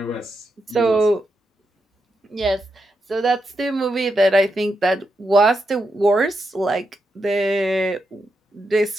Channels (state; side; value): normal; both; correlation 0.84